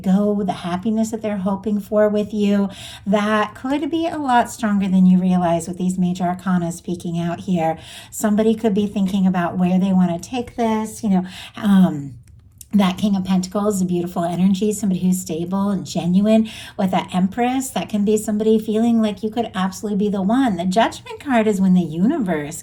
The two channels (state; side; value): identical; both; correlation 1.00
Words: go, the happiness that they're hoping for with you, that could be a lot stronger than you realize with these major arcana speaking out here. Somebody could be thinking about where they want to take this, that King of Pentacles, a beautiful energy, somebody who's stable and genuine. With that Empress, that can be somebody feeling like you could absolutely be the one. The Judgment card is when the universe